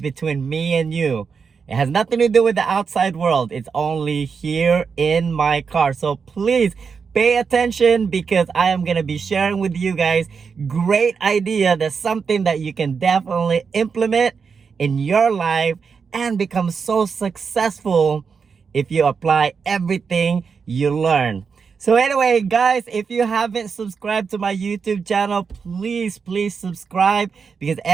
me and you. It has nothing to do with the outside world. It's only here in my car. So please pay attention because I am gonna be sharing with you guys great idea. That's something that you can definitely implement in your life and become so successful if you apply everything you learn. So anyway, guys, if you haven't subscribed to my YouTube channel, please subscribe, because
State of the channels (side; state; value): left; quieter; 5.7 dB